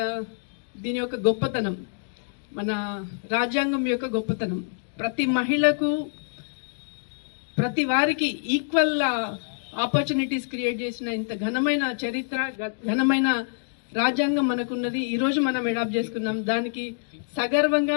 దీని యొక్క గొప్పతనం, మన రాజ్యాంగం యొక్క గొప్పతనం. ప్రతి మహిళకు, ప్రతి వారికి ఈక్వల్ ఆపర్చునిటీస్ క్రియేట్ చేసిన ఇంత ఘనమైన చరిత్ర, ఘనమైన రాజ్యాంగం మనకున్నది. ఈ రోజు మనం అడాప్ట్ చేసుకున్నాం. దానికి సగర్వంగా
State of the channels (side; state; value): right; silent; digital silence